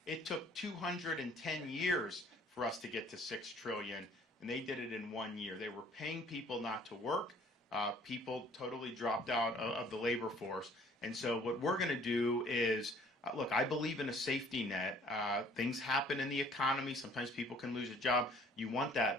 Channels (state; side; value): normal; both; correlation 0.56